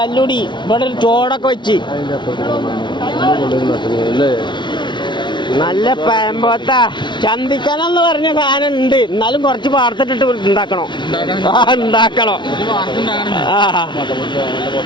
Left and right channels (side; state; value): right; late; 0.23 ms